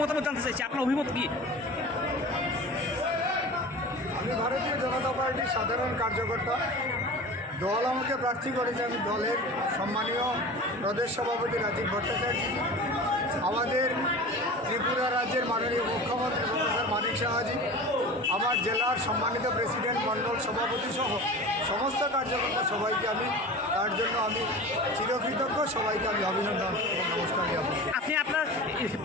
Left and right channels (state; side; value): normal; both; correlation 0.35